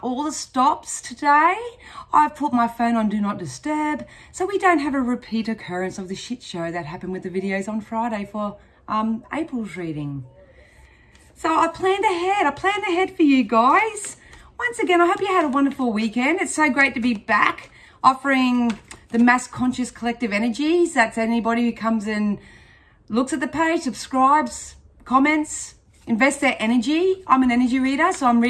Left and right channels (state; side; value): identical; both; correlation 1.00